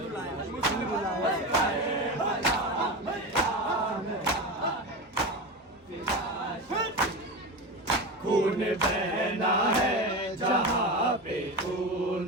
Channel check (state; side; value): normal; both; correlation 0.22